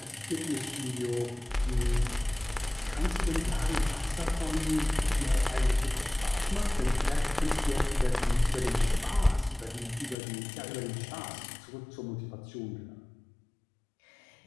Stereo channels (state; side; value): drops out; right; at 10.2 s